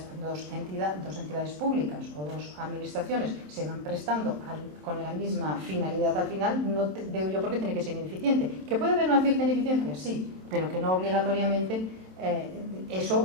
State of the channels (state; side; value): late; left; 27 ms